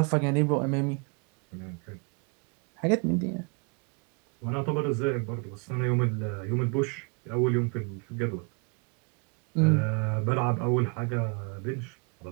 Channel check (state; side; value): quieter; left; 34.5 dB